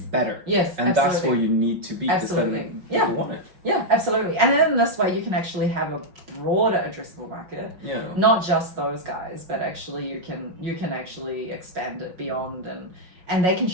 Yes, and absolutely. That's where you need to be. Absolutely. Then people want it. Yeah, absolutely. And then this way you can actually have a broader addressable market. Yeah. Not just those guys, but actually you can actually expand it beyond and they can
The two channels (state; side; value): late; left; 5.5 ms